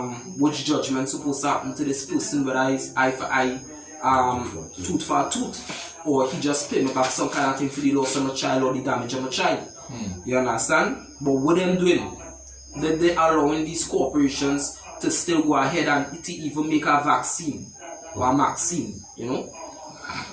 which judgment supposed to happen to this person, whether it's eye for eye, tooth for tooth, or he just pay me back some kind of thing for the loss of my child or the damage of my child. You understand? But what them doing? They allowing these corporations to still go ahead and to even make a vaccine or a vaccine,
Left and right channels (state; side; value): identical; both; correlation 1.00